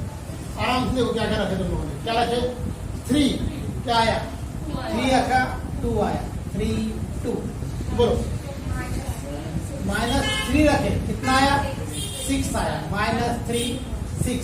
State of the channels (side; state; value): both; identical; correlation 1.00